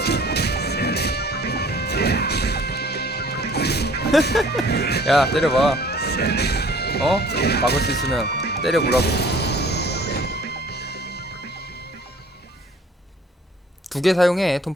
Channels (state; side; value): normal; both; correlation 0.52